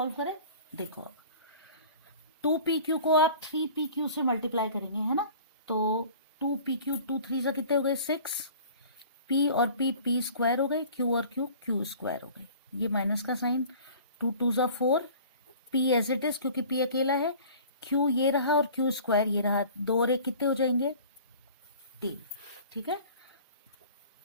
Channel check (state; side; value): inverted; both; correlation -0.46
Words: करें। देखो 2pq को आप 3pq से मल्टीप्लाई करेंगे, है ना। तो 2pq 2 3 कितने हो गए 6, p और p स्क्वायर हो गए, q और q स्क्वायर हो गए। ये माइनस का sign, 2 2 4, p as it is क्योंकि p अकेला है, q ये रहा और q स्क्वायर ये रहा, 2 और 1 कितने हो जाएंगे 3, ठीक है।